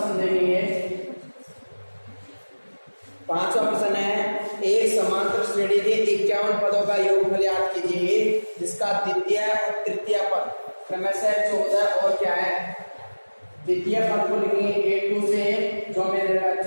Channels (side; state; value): both; inverted; correlation -1.00